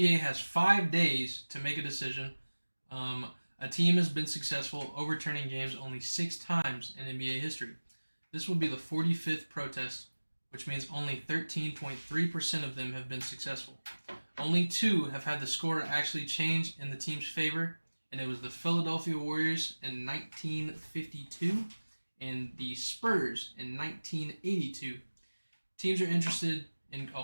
has 5 days to make a decision. A team has been successful overturning games only 6 times in NBA history. This will be the 45th protest, which means only 13.3% of them have been successful. Only 2 have had the score actually change in the team's favor, and it was the Philadelphia Warriors in 1952 and the Spurs in 1982. Teams are interested in.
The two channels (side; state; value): both; inverted; correlation -1.00